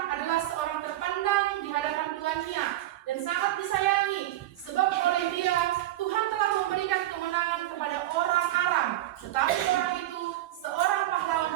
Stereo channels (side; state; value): left; quieter; 14.8 dB